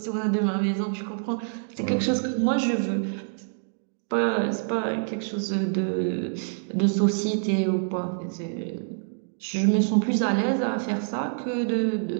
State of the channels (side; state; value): left; silent; digital silence